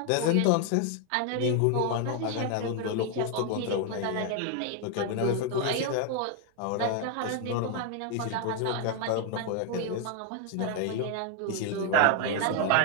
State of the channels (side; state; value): both; different; correlation 0.00